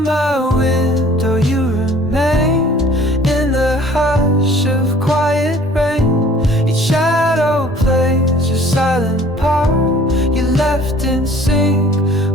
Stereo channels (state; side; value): normal; both; correlation 0.52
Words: window you remain, in the hush of quiet rain. Each shadow plays your silent part, you left in sync